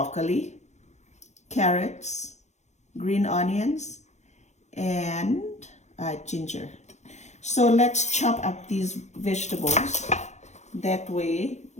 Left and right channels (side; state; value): right; late; 0.33 ms